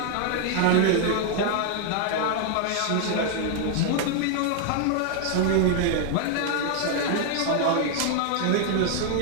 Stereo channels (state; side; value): different; both; correlation 0.00